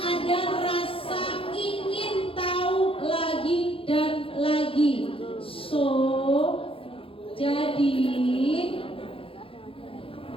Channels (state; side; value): late; right; 0.27 ms